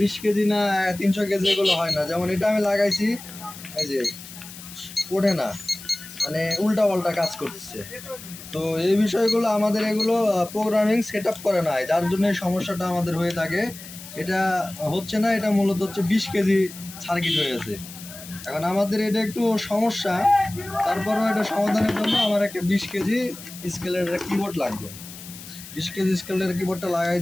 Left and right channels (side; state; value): left; noise; hiss, 15 dB below the sound